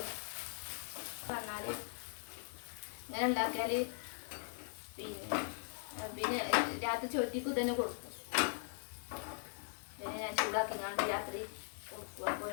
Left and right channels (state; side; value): silent; right; digital silence